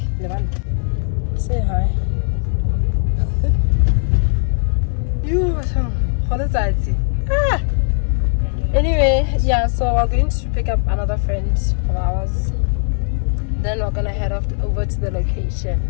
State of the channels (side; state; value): right; silent; 66 dB below the other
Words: say hi. Anyway, yeah, so we're going to pick up another friend of ours. Then we're gonna head off over to the location.